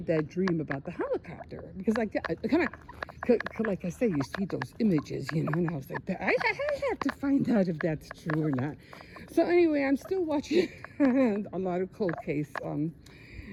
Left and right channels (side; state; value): both; identical; correlation 1.00